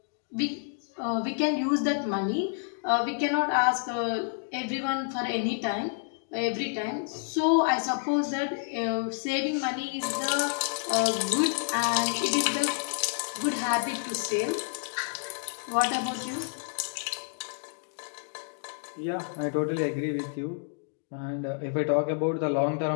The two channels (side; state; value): right; silent; 58 dB below the other